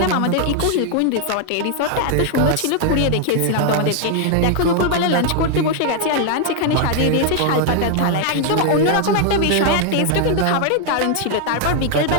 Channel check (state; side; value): different; both; correlation 0.00